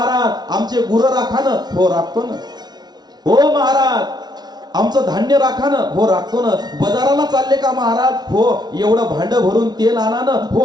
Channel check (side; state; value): left; late; 0.19 ms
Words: आमचे गुरं राखा ना. हो राखतो ना. हो महाराज, आमचं धान्य राखा ना. हो राखतो ना. बाजाराला चालले का महाराज? हो. एवढं भांड भरून तेल आणा ना.